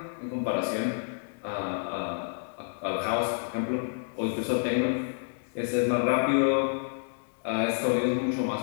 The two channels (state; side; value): silent; right; digital silence